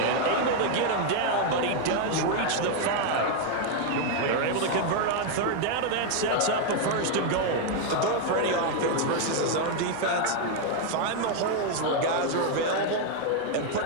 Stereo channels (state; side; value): different; both; correlation 0.00